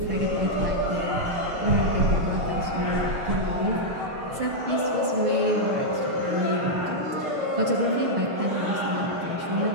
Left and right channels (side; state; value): left; late; 6.2 ms